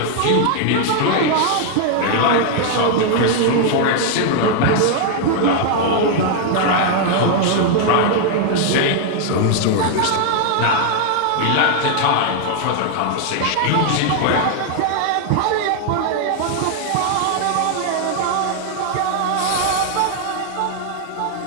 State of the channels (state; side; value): different; both; correlation 0.00